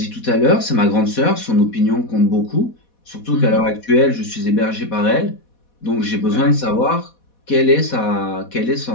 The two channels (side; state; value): right; late; 4.1 ms